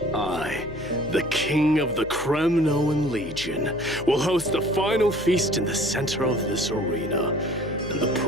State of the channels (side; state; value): left; noise; hum, 16 dB below the sound